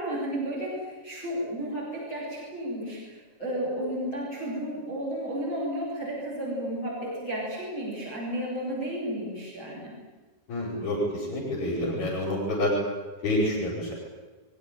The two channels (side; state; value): right; late; 7.3 ms